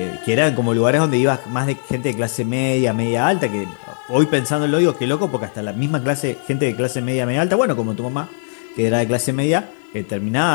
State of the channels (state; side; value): silent; right; 66 dB below the other